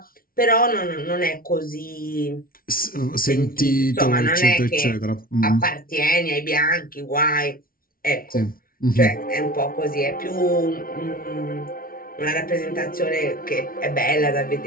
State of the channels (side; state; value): right; late; 0.43 ms